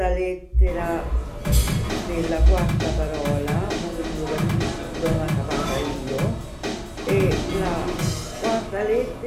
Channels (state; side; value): identical; both; correlation 1.00